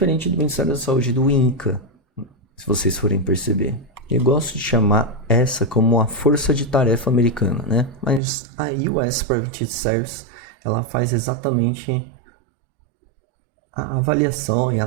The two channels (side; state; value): left; drops out; at 8.2 s